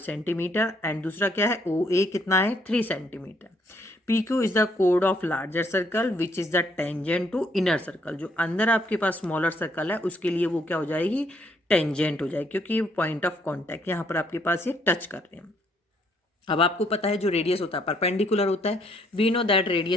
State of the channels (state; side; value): normal; both; correlation 0.69